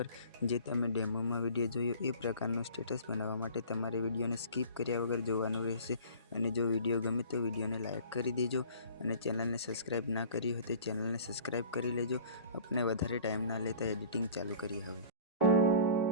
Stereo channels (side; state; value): both; inverted; correlation -0.45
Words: जे तमे डेमो में विडियो जोयो ए प्रकारनो स्टेटस बनावा माटे तमारे विडियो ने स्कीप कर्या वगर जोवानुं रहेशे। अने जो विडियो गमे तो विडियो ने लाइक करी देजो अने चेनल ने सब्सक्राइब ना करी हो तो चेनल ने सब्सक्राइब करी लेजो। अपने वधारे टाइम ना लेता एडिटिंग चालू करी हवे।